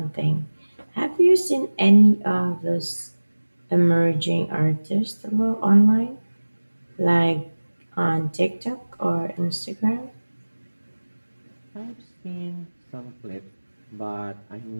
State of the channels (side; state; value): both; inverted; correlation -1.00